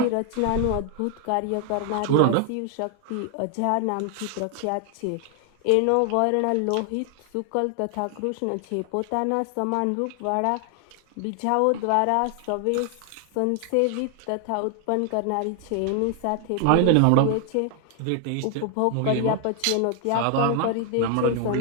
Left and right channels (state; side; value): different; both; correlation 0.00